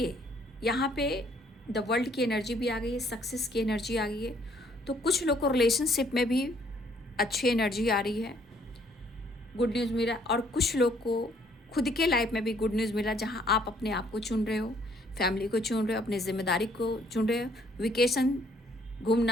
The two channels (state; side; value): normal; both; correlation 0.64